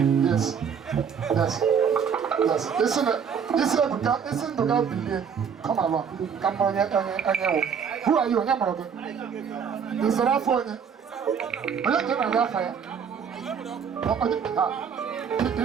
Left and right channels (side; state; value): left; quieter; 7.0 dB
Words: Yes. Listen to God be come along. Come on, who are you? Is that for you? I don't know that fire.